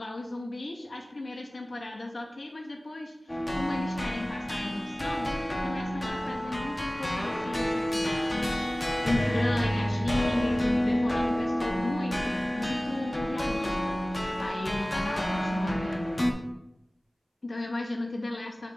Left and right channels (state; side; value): normal; both; correlation 0.98